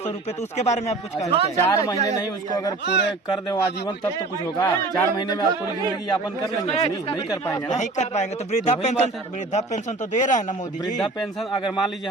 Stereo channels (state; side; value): quieter; left; 3.2 dB